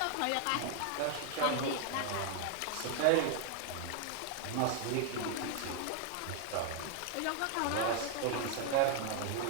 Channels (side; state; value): both; different; correlation 0.00